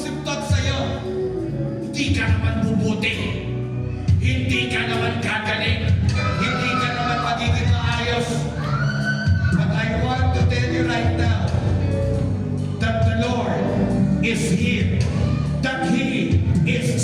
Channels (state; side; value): identical; both; correlation 1.00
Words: thought sa'yo. Hindi ka naman bubuti. Hindi ka naman gagaling. Hindi ka naman magiging maayos. But I want to tell you right now that the Lord is here. That He is